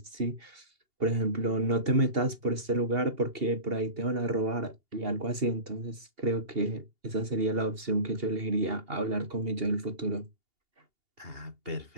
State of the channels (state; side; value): late; left; 2.8 ms